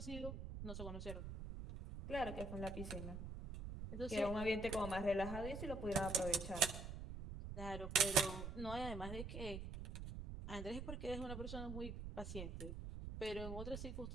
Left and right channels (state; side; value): noise; right; rumble, 7 dB below the sound